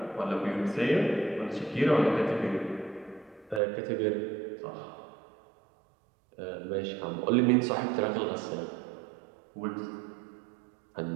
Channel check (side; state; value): left; drops out; at 3.6 s